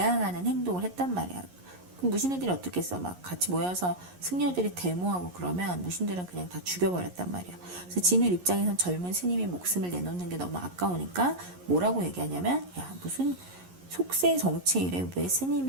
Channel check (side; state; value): left; late; 11 ms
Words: 행동을 했단 말이야. 그럼 무신애들이 어떻겠어? 막 같이 모여서 승려들이 데모하고 그러면 무신들은 그냥 다 죽여버렸단 말이야. 그래서 진울 입장에선 젊은 스님이 목숨을 내놓는 게 너무 아까우니까 뭐라고 얘기하냐면, 야, 무슨 속세 정치일에 왜